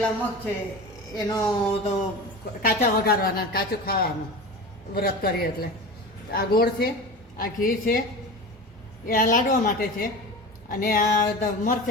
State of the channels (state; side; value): normal; both; correlation 0.31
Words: મગ છે એનો તો કાચા વઘારવાના, કાચું ખાવાનું વ્રત કરીએ એટલે. આ ગોળ છે, આ ઘી છે, એ આ લાડવા માટે છે. અને આ